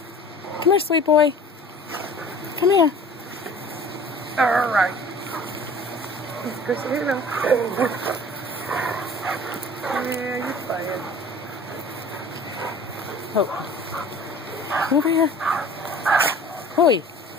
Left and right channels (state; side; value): normal; both; correlation 0.45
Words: Come here, sweet boy. Come here. All right. Chris, here you go. Yeah, you're playing. Oh. Over here. Hoi.